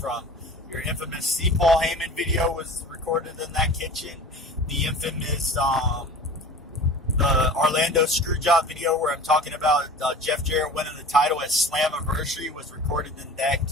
Your infamous C. Paul Heyman video was recorded in that kitchen. The infamous the Orlando Screwjob video where I'm talking about Jeff Jarrett winning the title at Slammiversary was recorded in that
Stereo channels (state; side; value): normal; both; correlation 0.40